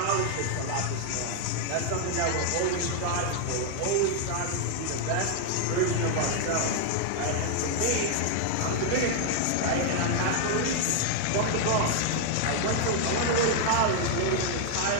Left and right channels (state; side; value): different; both; correlation 0.00